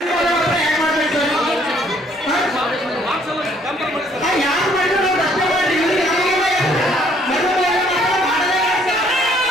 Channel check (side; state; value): both; normal; correlation 0.64